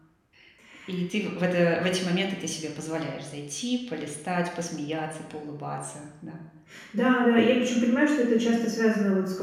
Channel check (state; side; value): identical; both; correlation 1.00